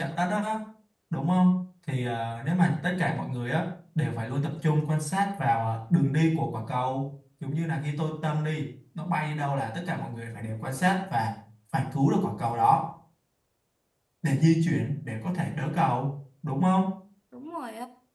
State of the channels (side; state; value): both; identical; correlation 1.00